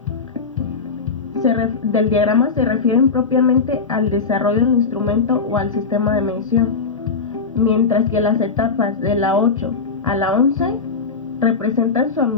del diagrama se refieren propiamente al desarrollo del instrumento o al sistema de medición, mientras que las etapas de la 8 a la 11 representan su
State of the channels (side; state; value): right; quieter; 4.8 dB